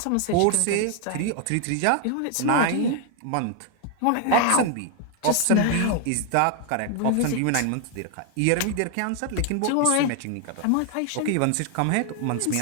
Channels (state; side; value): different; both; correlation 0.00